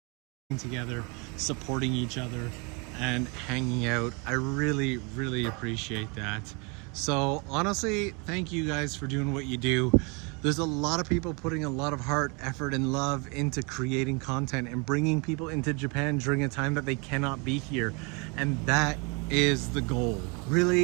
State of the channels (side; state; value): left; quieter; 31.5 dB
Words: together, supporting each other and hanging out. I really appreciate that. So honestly, thank you guys for doing what you do. There's a lot of people putting a lot of heart, effort, and love into creating content and bringing people into Japan during a time that they cannot be here. And that is the goal.